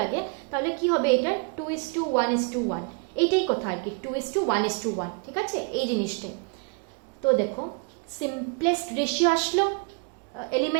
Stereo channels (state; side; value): quieter; left; 35.7 dB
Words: তাহলে কি হবে? এটা 2:1:1, এইটাই কথা আর কি, 2:1:1। ঠিক আছে, এই জিনিসটাই। তো দেখো সিম্পলেস্ট রেশিও আসলো